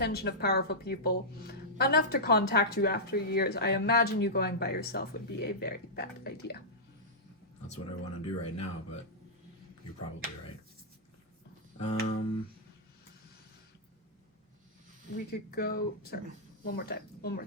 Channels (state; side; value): normal; both; correlation -0.12